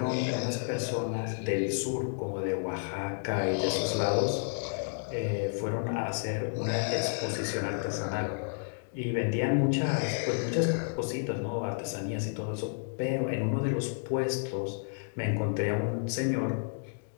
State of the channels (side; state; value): right; silent; digital silence